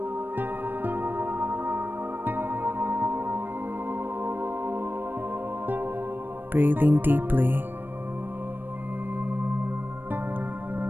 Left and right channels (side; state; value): left; late; 0.094 ms